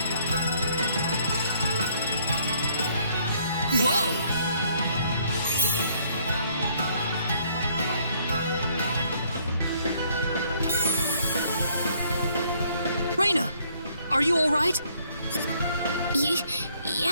Whoa! Rena, are you all right?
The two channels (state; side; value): inverted; both; correlation -0.65